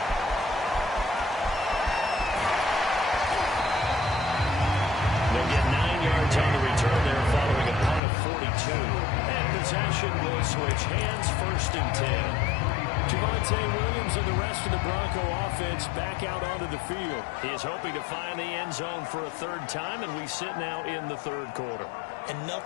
They'll get 9 yards on the return there following a punt of 42. And possession will switch hands, 1st and 10. Javonte Williams and the rest of the Bronco offense back out onto the field. He is hoping to find the end zone for a 3rd time, and we sit now in the 3rd quarter. And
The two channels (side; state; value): right; drops out; at 8.0 s